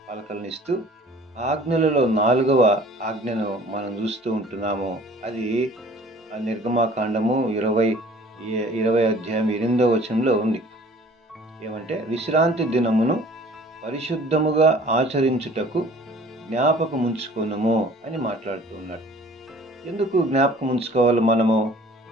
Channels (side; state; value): both; normal; correlation 0.50